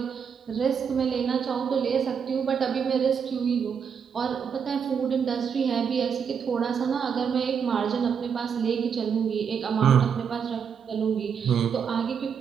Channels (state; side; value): quieter; left; 7.0 dB